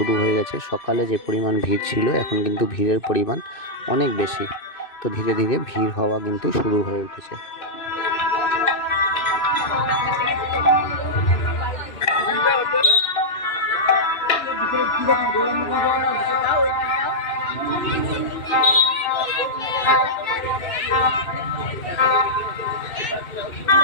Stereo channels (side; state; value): right; late; 2.6 ms